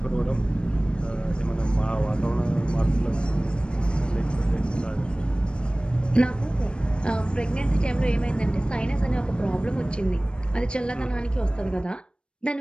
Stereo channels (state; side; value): late; right; 0.054 ms